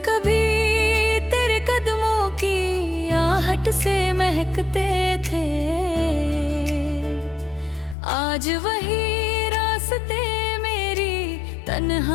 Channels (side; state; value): right; drops out; at 8.0 s